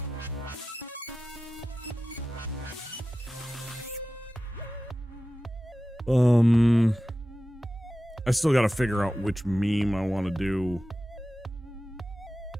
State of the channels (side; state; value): both; normal; correlation 0.94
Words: I still gotta figure out which meme I want to do